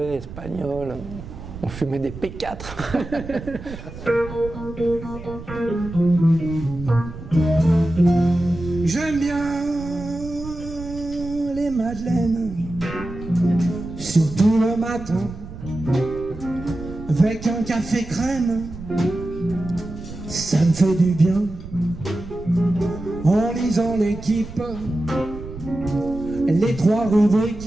espagnol. On fumait des P4. J'aime bien les madeleines, surtout le matin, avec un café crème, ça me fait du bien. En lisant l'équipe, les 3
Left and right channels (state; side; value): noise; right; rumble, 13 dB below the sound